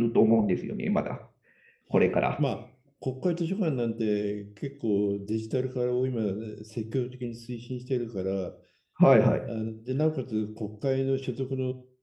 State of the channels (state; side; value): identical; both; correlation 1.00